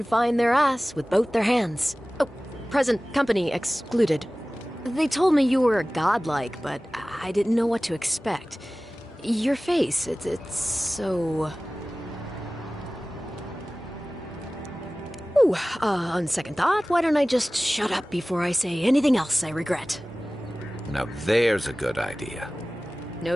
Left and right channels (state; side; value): normal; both; correlation 0.98